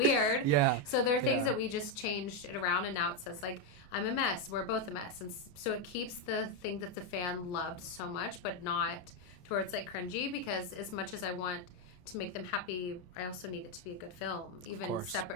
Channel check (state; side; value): late; right; 28 ms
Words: Yeah. So there are things that we just changed it around, and now it says like, I'm a mess, we're both a mess. And so it keeps the thing that the fan loved so much, but not to where it's like cringy, because as much as I want to make them happy, I also need it to be a good film, even